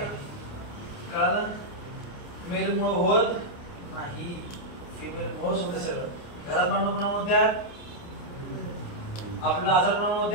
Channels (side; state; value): right; late; 29 ms